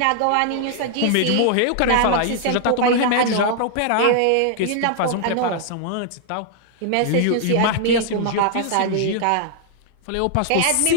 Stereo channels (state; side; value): different; both; correlation 0.00